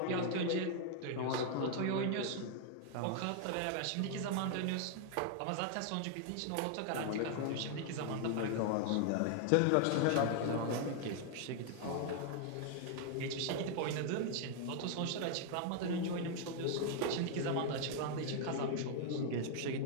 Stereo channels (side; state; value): both; different; correlation 0.00